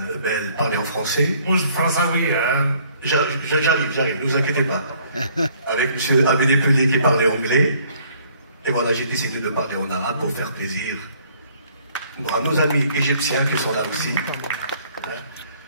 Bell parler en français. Moi, je pense ça, oui. J'arrive, ne vous inquiétez pas. Avec M. Abédé Pelé qui parlait anglais. Et voilà, j'ai décidé de parler en arabe pour faire plaisir à nos amis égyptiens qui sont là aussi.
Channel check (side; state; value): both; inverted; correlation -0.61